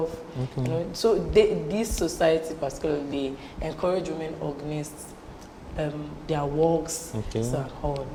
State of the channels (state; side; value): identical; both; correlation 1.00